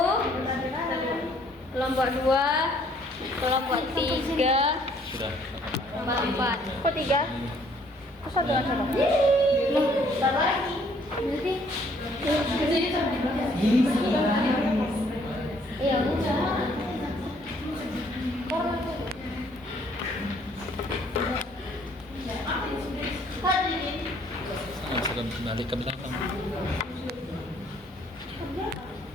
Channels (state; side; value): normal; both; correlation 0.63